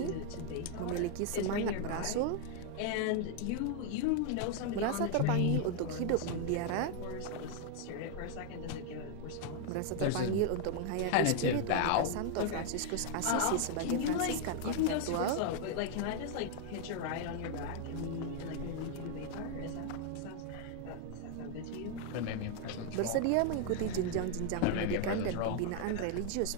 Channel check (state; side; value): different; both; correlation 0.00